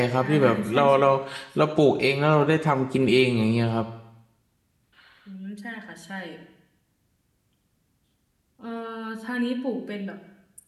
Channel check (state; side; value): identical; both; correlation 1.00